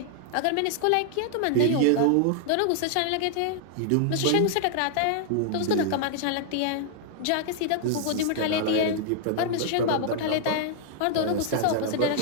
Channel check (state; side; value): different; both; correlation 0.00